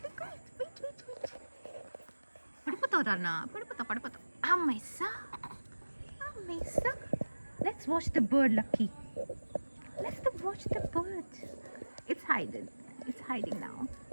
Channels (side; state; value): both; inverted; correlation -1.00